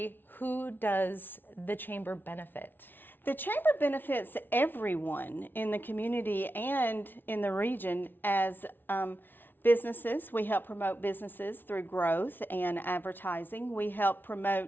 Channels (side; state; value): right; late; 0.097 ms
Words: who does the Chamber benefit? The Chamber benefits everyone in the community and in the region as businesses. We help promote businesses through growth and advertising. We help